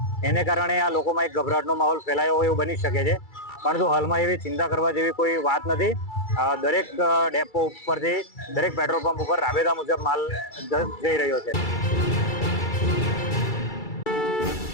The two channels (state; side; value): late; right; 2.3 ms